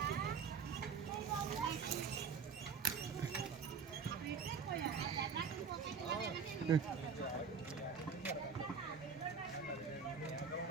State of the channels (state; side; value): quieter; left; 5.8 dB